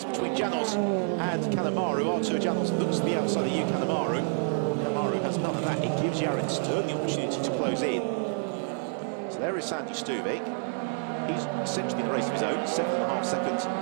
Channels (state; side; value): silent; left; 59 dB below the other